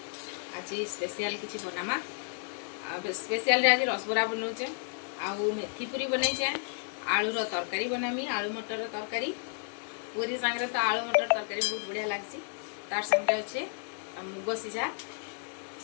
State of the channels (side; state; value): right; silent; 56 dB below the other